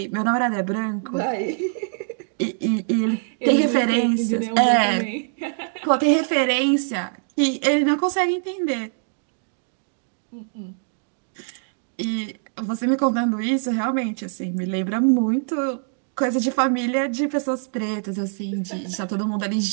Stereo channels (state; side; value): silent; left; digital silence